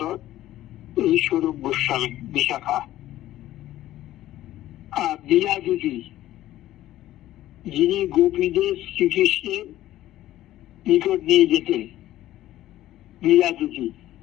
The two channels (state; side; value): quieter; right; 14.3 dB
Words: এই স্বরূপ গোস্বামী বিশাখা। আর বিরাজুজি, যিনি গোপীদের শ্রীকৃষ্ণের নিকট নিয়ে যেতেন, বিরাজুজি,